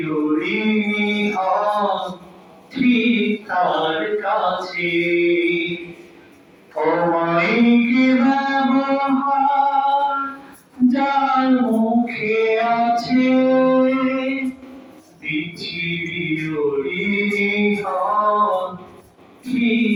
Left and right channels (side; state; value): both; identical; correlation 1.00